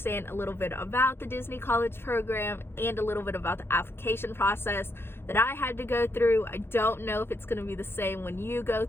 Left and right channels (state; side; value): late; right; 0.11 ms